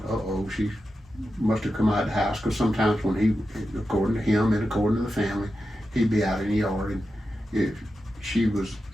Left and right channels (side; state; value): both; normal; correlation 0.90